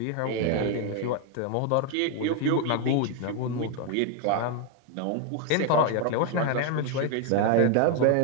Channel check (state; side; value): different; both; correlation 0.01